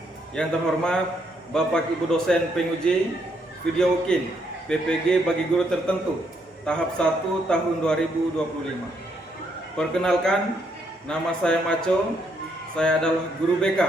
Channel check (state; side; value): normal; both; correlation 0.74